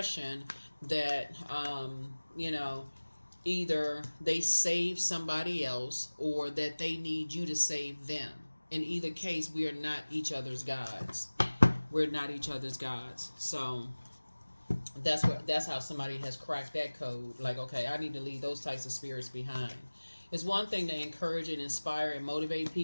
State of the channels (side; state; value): both; inverted; correlation -1.00